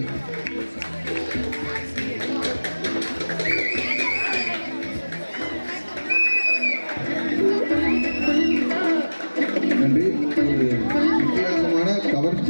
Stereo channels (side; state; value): both; inverted; correlation -1.00